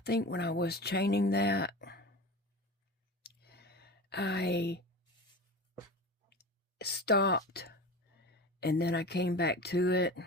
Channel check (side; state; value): both; normal; correlation 0.31